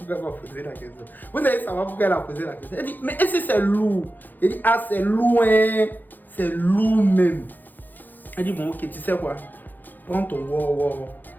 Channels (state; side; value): late; right; 0.087 ms